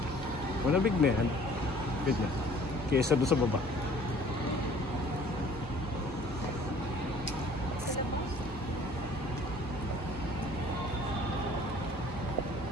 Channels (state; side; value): normal; both; correlation 0.53